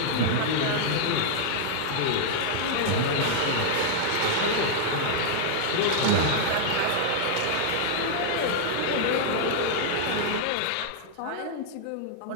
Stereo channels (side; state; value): both; different; correlation -0.01